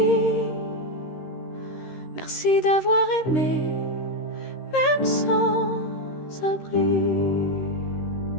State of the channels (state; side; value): late; right; 13 ms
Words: Merci d'avoir aimé, même sans abri.